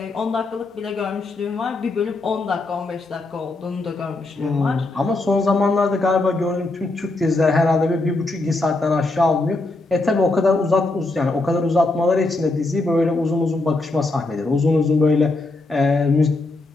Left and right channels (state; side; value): quieter; right; 3.1 dB